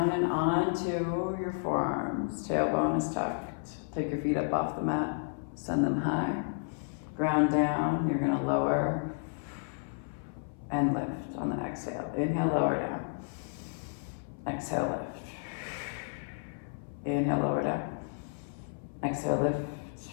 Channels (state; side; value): silent; right; 56 dB below the other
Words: and onto your forearms. Tailbone is tucked. Take your feet up off the mat. Send them high. Ground down. You're going to lower and lift on the exhale. Inhale, lower down. Exhale, lift. Inhale, lower down. Exhale, lift.